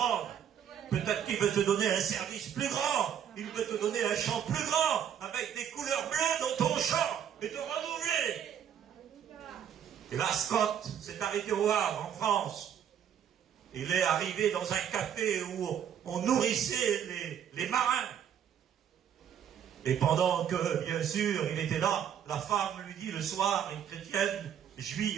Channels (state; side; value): quieter; left; 9.0 dB